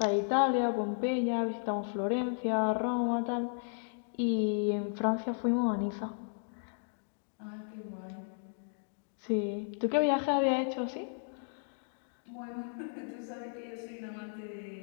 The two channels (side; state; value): right; silent; digital silence